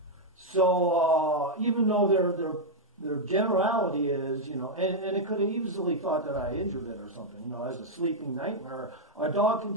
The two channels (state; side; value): normal; both; correlation -0.02